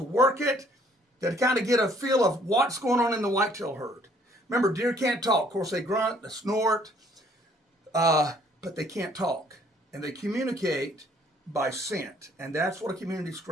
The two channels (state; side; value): normal; both; correlation 0.62